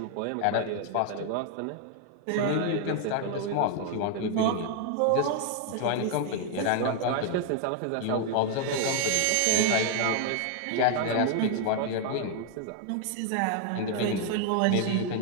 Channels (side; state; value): both; different; correlation 0.00